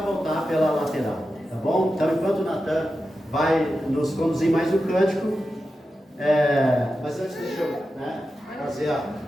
voltar pela lateral, tá bom? Então enquanto o Natan vai nos conduzir mais um cântico, mas antes deixa eu, né, fazer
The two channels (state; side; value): normal; both; correlation 0.91